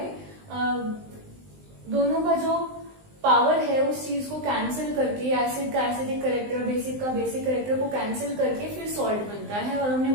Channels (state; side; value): late; left; 19 ms